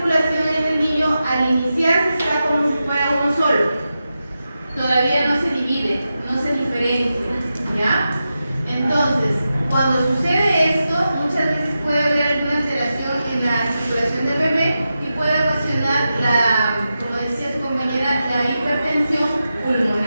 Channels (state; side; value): inverted; both; correlation -0.90